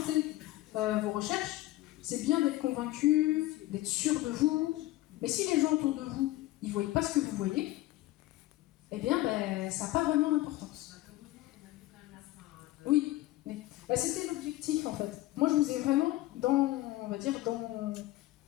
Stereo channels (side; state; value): right; quieter; 16.9 dB